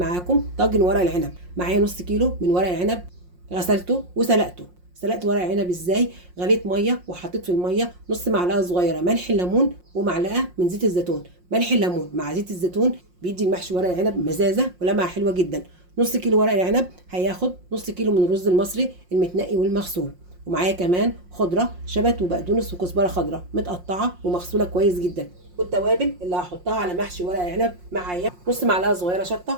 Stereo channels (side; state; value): left; late; 5.6 ms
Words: طاجن ورق العنب. معايا نص كيلو من ورق العنب، غسلته وسلقته. سلقت ورق العنب ازاي؟ غليت ميه وحطيت في الميه نص معلقه صغيره ملح الليمون ومعلقه من زيت الزيتون. ملح الليمون مع زيت الزيتون بيدي المحشي ورق العنب مزازه ولمعه حلوه جدا. نص كيلو ورق العنب هياخد نص كيلو من الرز المصري المتنقي والمغسول. ومعايا كمان خضره شبت وبقدونس وكزبره خضراء متقطعه ومغسوله كويس جدا. والتوابل اللي هحطها على محشي ورق العنب معايا نص معلقه صغيره